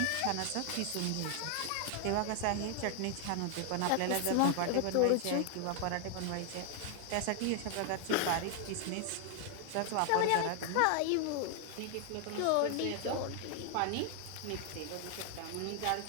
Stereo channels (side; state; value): both; different; correlation 0.00